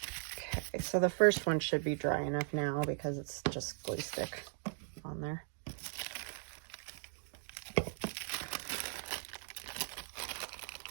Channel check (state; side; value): silent; left; digital silence